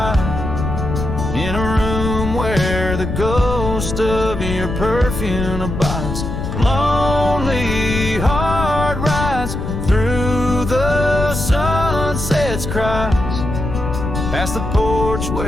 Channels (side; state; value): left; noise; rumble, 4 dB below the sound